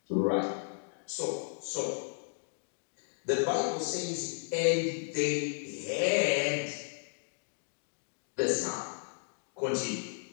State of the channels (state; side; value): silent; right; digital silence